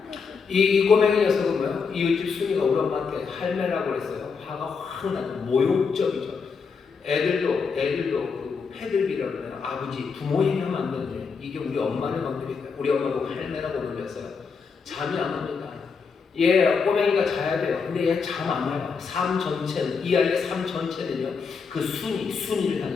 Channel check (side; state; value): right; quieter; 5.4 dB